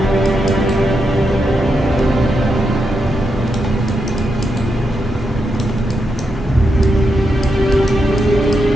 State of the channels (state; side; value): normal; both; correlation 0.84